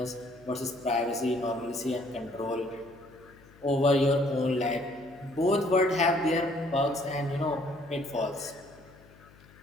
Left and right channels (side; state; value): left; noise; hum, 25 dB below the sound